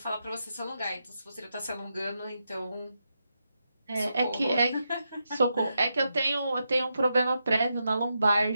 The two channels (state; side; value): inverted; both; correlation -0.85